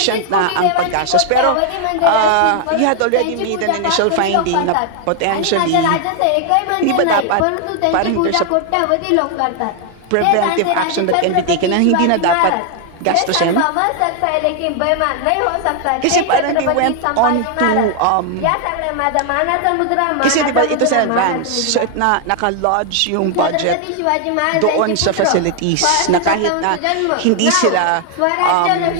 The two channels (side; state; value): both; different; correlation 0.00